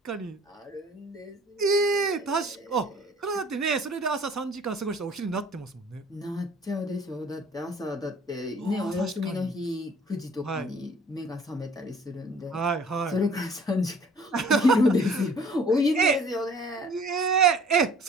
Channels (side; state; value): both; normal; correlation 0.52